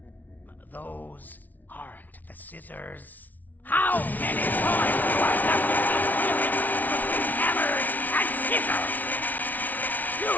Those aren't the scissors. How many times do I have to keep flipping between hammers and scissors? You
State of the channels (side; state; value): right; late; 0.079 ms